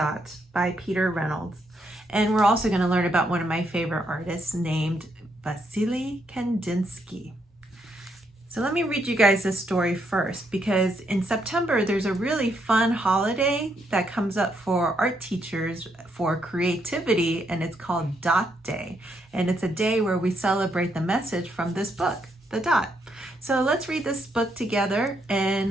by Peter Reynolds. And we're also going to learn about one of my favorite artists named Vasily Kandinsky. So let me read you guys this story first, because in September there's a really fun holiday that comes up for art teachers for creativity, and it's called Dot Day. And it's a day where we celebrate the message from this book, The Dot. So let's read this book together and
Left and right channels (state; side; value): normal; both; correlation 0.76